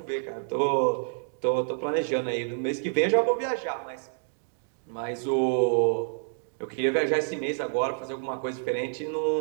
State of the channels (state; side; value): silent; left; digital silence